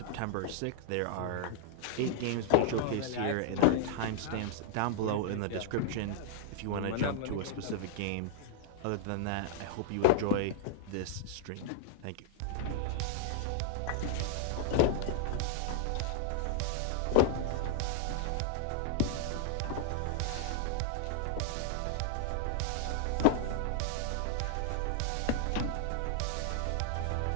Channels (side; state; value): both; different; correlation 0.00